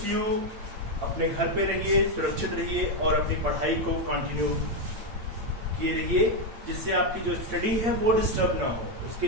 you अपने घर पे रहिए, सुरक्षित रहिए और अपनी पढ़ाई को कंटिन्यू किए रहिए, जिससे आपकी जो स्टडी है वो डिस्टर्ब ना हो। उसके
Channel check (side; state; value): left; late; 8.8 ms